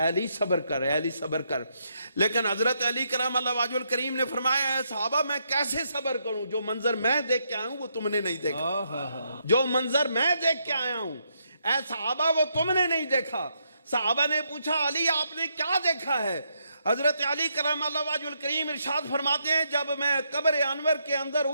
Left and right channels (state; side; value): inverted; both; correlation -0.78